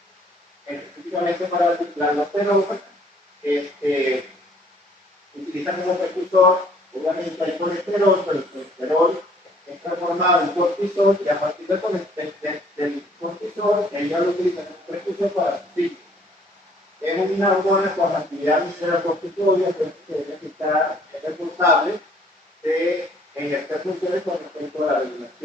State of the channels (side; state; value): both; normal; correlation 0.60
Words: específicamente para la aldosterona, utiliza como precursor, obviamente hay colesterol, pero el colesterol es transformado en cortisol, y a partir del cortisol, ella lo utiliza como precursor para su ciclo. Es una hormona con actividad visceral corticoide, que está responsable de ejercer funciones con respecto a la